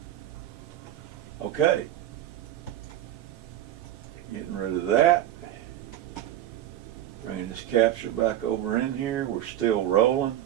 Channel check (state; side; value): quieter; left; 12.5 dB